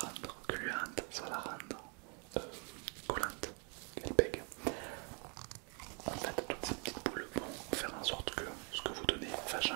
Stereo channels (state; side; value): quieter; left; 36.7 dB